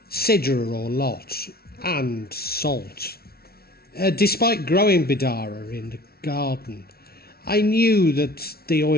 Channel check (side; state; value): right; late; 0.44 ms